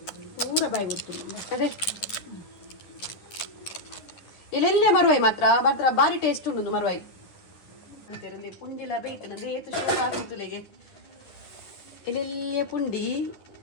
ಪೂರ ಬಾಯಿ ಬಿಡ್ತು ಅದೇ ಇಲ್ಲೆಲ್ಲೇ ಮರುವಾಯಿ ಮಾತ್ರ ಬಾರಿ ಟೇಸ್ಟ್ ಉಂಡು ಮರುವಾಯಿ ಅಂತಿರಲಿ ಪುಂಡಿಲ ಬೇಯ್ತನದೆ ಏತು ಶೋಕ್ ಆಗಿತ್ತುಲೆಗೆ ಇಲ್ಲೆಲ್ಲೇ ಪುಂಡಿ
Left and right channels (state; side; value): late; right; 10 ms